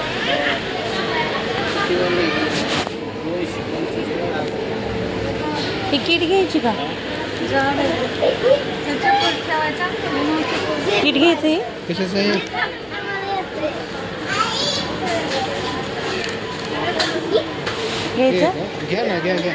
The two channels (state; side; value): identical; both; correlation 1.00